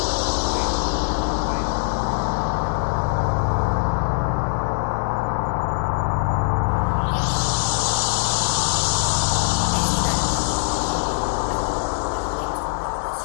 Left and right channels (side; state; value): right; silent; 61 dB below the other